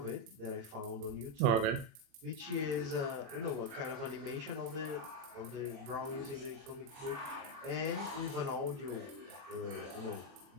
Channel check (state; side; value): late; left; 36 ms